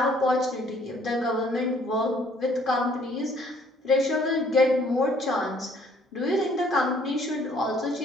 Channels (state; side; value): normal; both; correlation 0.61